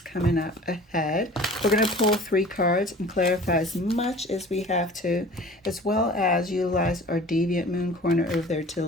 coming up ahead. We're going to pull 3 cards and clarify as much as we have to, as well as utilize our deviant moon corner over there to the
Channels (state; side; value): normal; both; correlation 0.44